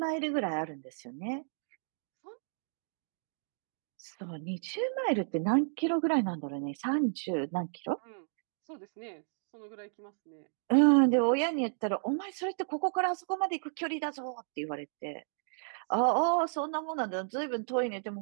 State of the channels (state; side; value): silent; left; digital silence